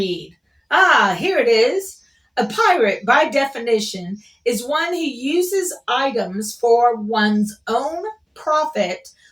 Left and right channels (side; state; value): both; identical; correlation 1.00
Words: Ah, here it is. A pirate, by definition, is one who uses items for one's own profit